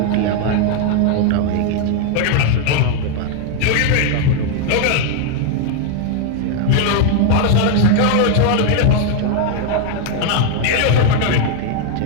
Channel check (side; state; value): both; different; correlation 0.00